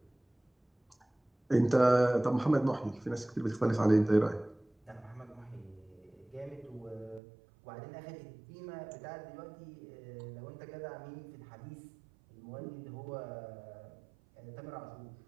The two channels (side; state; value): left; drops out; at 7.2 s